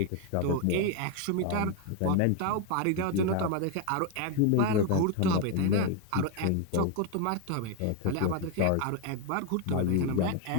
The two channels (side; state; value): both; different; correlation 0.01